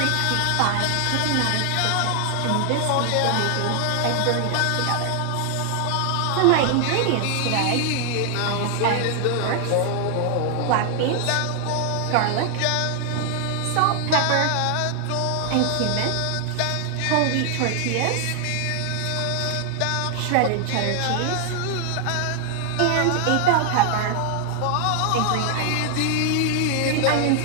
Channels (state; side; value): different; both; correlation 0.00